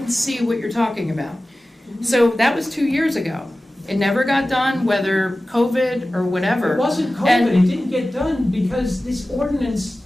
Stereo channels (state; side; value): normal; both; correlation 0.96